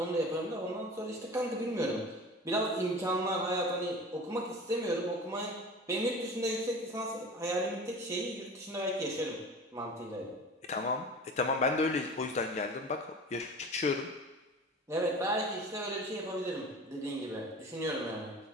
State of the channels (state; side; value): normal; both; correlation 0.37